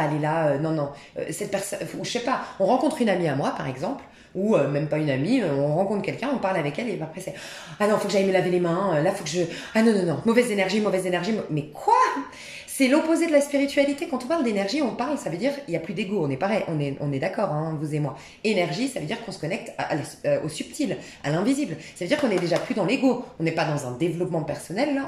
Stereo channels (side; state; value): both; identical; correlation 1.00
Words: aller là non non cette personne ou je sais pas on rencontre une amie à moi par exemple ou même pas une amie on rencontre quelqu'un on parle avec elle et après c'est ah non faut que j'aille me laver les mains là faut que je ah non non non mauvaise énergie mais quoi c'est l'opposé de la spiritualité quand on parle d'énergie on parle ça veut dire il y a plus d'ego on est pareil on est d'accord hein, vous et moi énergie ça veut dire qu'on se connecte au subtil à l'invisible ça veut dire qu'on est déjà plus dans l'ego on n'est pas dans un développement personnel là